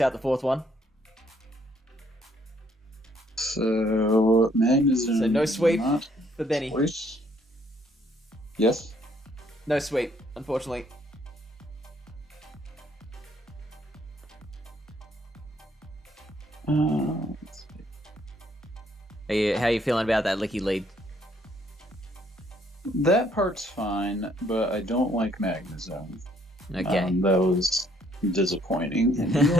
the fourth one. So Magnezone. So no sweep not for Benny. choice. Yes. No sweep, unfortunately. Let's see. How are you feeling about that licky lead? That part's fine, but I don't like Magnezone. Okay. That was disappointing. And he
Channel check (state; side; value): normal; both; correlation 0.66